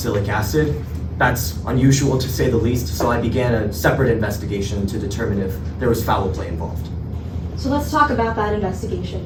acid. That's unusual to say the least, so I began a separate investigation to determine if there was foul play involved. So let's talk about that investigation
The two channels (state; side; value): identical; both; correlation 1.00